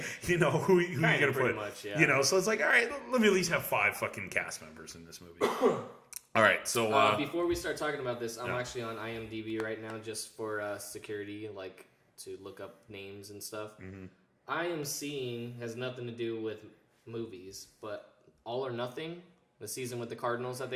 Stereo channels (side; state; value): both; identical; correlation 1.00